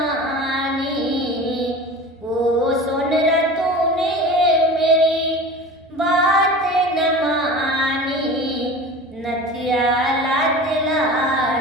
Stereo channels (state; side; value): normal; both; correlation 0.35